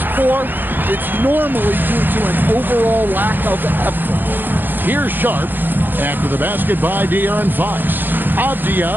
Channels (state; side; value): late; left; 0.092 ms